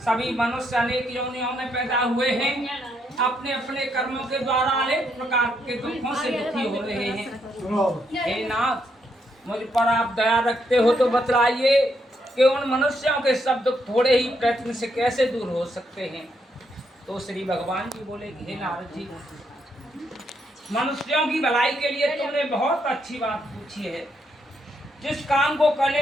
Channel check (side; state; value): both; normal; correlation 0.77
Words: सभी मनुष्य अनेक योनियों में पैदा हुए हैं। अपने अपने कर्मों के द्वारा अनेक प्रकार के दुखों से दुखी हो रहे हैं। हे नाथ, मुझ पर आप दया रखते हो तो बतलाइए कि उन मनुष्यों के सब दुख थोड़े ही प्रयत्न से कैसे दूर हो सकते हैं। तो श्री भगवान जी बोले, हे नारद जी, मनुष्यों की भलाई के लिए तुमने बहुत अच्छी बात पूछी है। जिस काम को